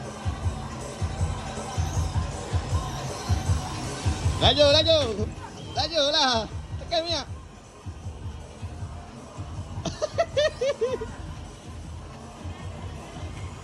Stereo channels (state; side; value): identical; both; correlation 1.00